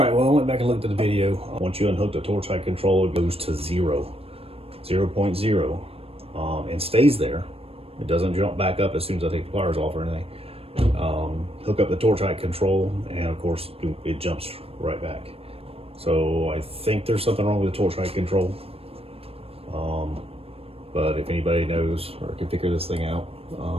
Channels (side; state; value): left; late; 0.28 ms